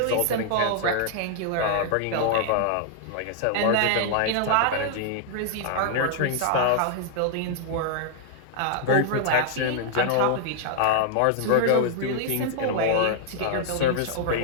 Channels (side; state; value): both; different; correlation -0.01